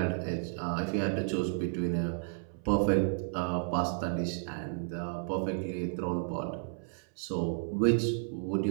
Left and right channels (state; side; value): silent; left; 56 dB below the other